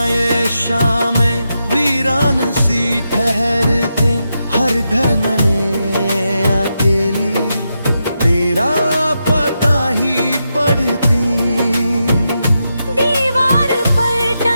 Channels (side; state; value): both; inverted; correlation -0.86